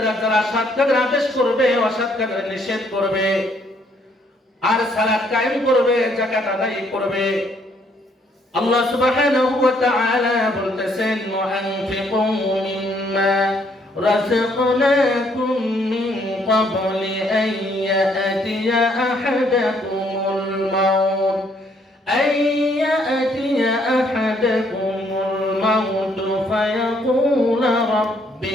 যারা সৎ কাজের আদেশ করবে, অসৎ কাজের নিষেধ করবে। আর সালাত কায়েম করবে, যাকাত আদায় করবে। আল্লাহ সুবহানাহু ওয়া তাআলা বলতেছেন, ওয়ানফিকু মিম্মা রাযাকনাকুম মিন ক্বাবলি আন ইয়াতিয়া আহাদাকুমুল মাউত ফায়াকুলা রাব্বি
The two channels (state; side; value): normal; both; correlation 0.68